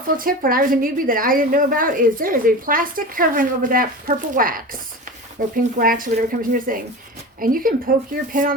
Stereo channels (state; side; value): normal; both; correlation 0.30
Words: tip when I was a newbie that I didn't know about is there is a plastic covering over that purple wax or pink wax or whatever comes in your thing. And you can poke your pen